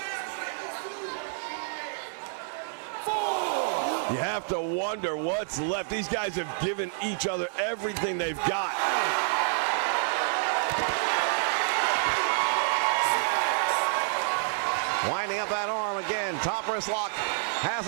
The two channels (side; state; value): left; silent; digital silence